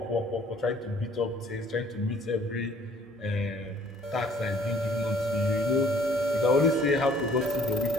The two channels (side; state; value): both; normal; correlation 0.57